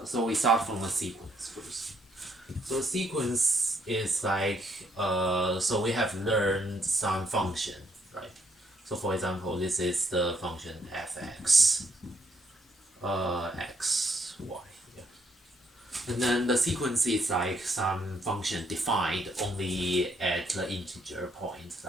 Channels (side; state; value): both; normal; correlation 0.72